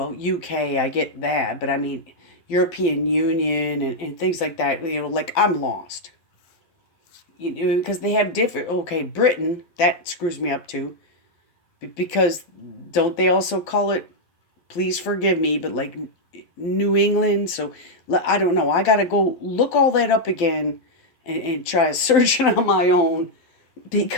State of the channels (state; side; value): late; right; 12 ms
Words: UK, I get that, but I mean, European Union and things like that, like I'm lost. Because they have different, okay, Britain, that screws me up too. Because don't they also call it, please forgive me, but like New England? So I don't know. I got to go look all that up again and try to search it on my own